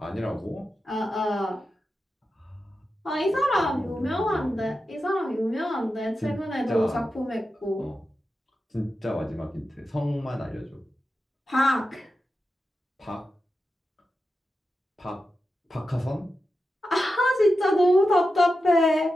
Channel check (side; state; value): both; normal; correlation 0.91